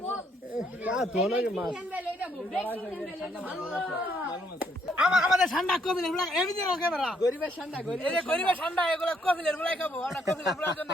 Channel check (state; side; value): normal; both; correlation 0.71